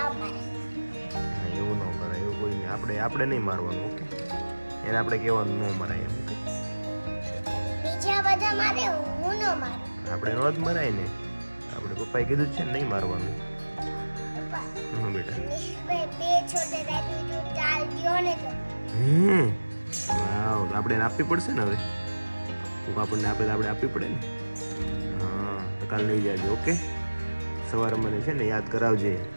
મારે. એવું ન કરાય. એવું કોઈ નહીં. આપણે નહીં મારવાનું. ઓકે, એને આપણે કહેવાનું ન મરાય એમ. ઓકે, બીજા બધા મારે હું ન મારું. આપણે નો જ મરાય ને. આપણે પપ્પાએ કીધું જ છે ને નહીં મારવાનું. પપ્પા હા બેટા. બે છોટે રાખી તો ચાલ ગયો ને તો વાવ, આપણે એને આપવી પડશે ને હવે. કોક આપણને આપે તો આપણે આપવી પડે ને. હા, તો કાલ લઈ જાજો. ઓકે, સવારે મને છે ને યાદ કરાવજે.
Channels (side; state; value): both; inverted; correlation -1.00